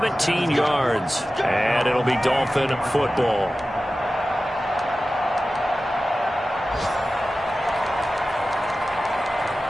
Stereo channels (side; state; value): both; normal; correlation 0.95